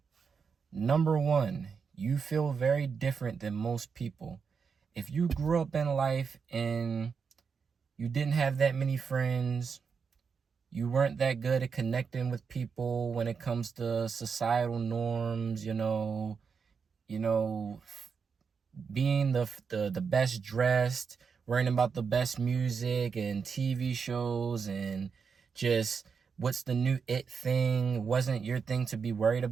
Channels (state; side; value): quieter; left; 5.9 dB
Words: Number 1, you feel very different than most people. If you grew up in life and you didn't have that many friends, you weren't that good at connecting with people when it comes to societal norms, you know, being the best dressed, worrying about the best music and TV shows, and just what's the new it thing wasn't your thing to be worried